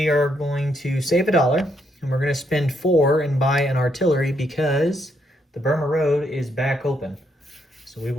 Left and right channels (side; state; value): both; normal; correlation 0.76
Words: are going to save $1 and we're going to spend 4 and buy an artillery because the Burma Road is back open. So we